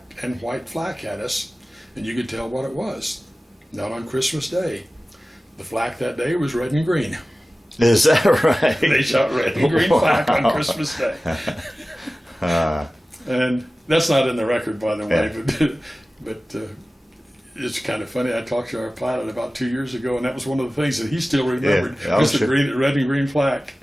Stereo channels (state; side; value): normal; both; correlation 0.96